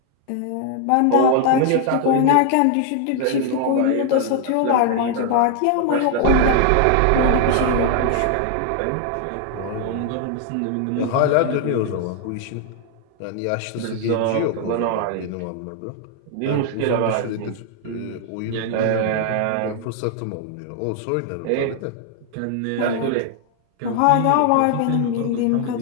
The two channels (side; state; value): both; different; correlation 0.00